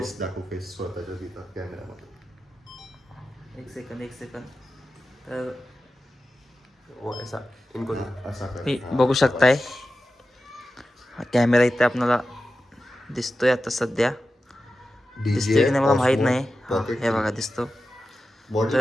दाखव, फेस स्वतःच्या तिथं कॅमेरामध्ये. एक सेकंद. तर ऐसा इनको असा मी बघू शकताय हा कॅमेरा इथे आपल्याला दिसतोय आता सध्या. दिसतोय की नाही मला माहित नाही. हे बघा दिसतो.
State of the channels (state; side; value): normal; both; correlation 0.92